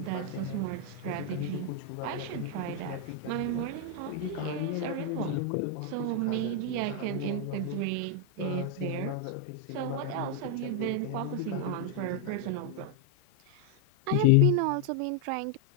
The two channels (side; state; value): both; different; correlation 0.00